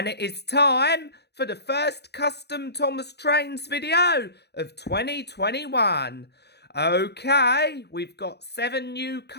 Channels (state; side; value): late; right; 0.48 ms